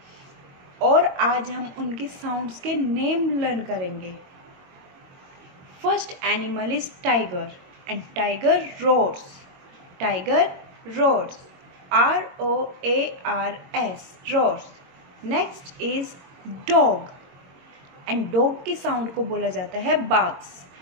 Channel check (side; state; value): left; late; 22 ms